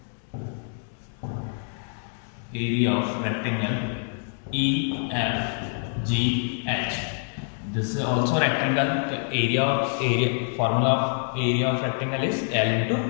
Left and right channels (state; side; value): silent; right; 61 dB below the other